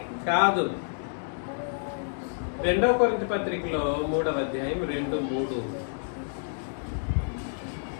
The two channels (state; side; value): silent; right; digital silence